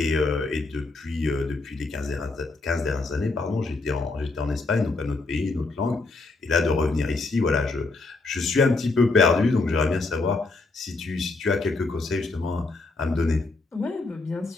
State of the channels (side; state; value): right; quieter; 3.5 dB